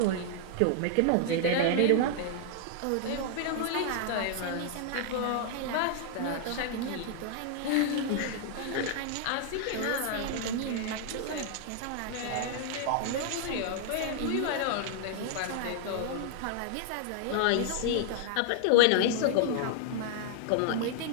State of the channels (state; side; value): different; both; correlation -0.01